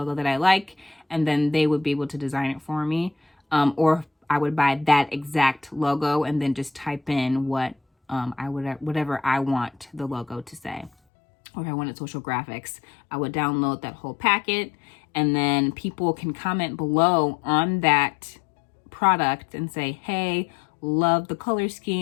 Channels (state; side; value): drops out; right; at 10.9 s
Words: that I like, and then they would be able to design it for me. Or I would buy that exact logo and then just type in whatever I want the logo to say. Or if I wanted social graphics, I would download that whole packet, and then people can comment below on that product and say, hey, love the color